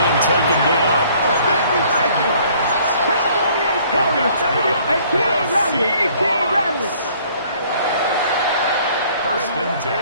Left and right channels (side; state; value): both; inverted; correlation -0.58